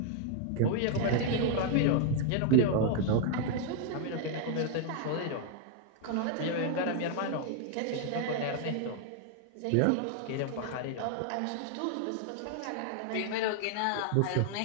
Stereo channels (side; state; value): both; different; correlation 0.00